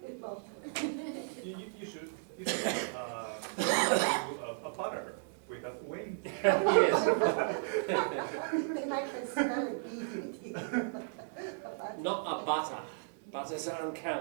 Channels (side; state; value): left; silent; 55 dB below the other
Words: long. You should do a butter with a wing. Yes. Then I can spell it easily. Not a butter. Butters are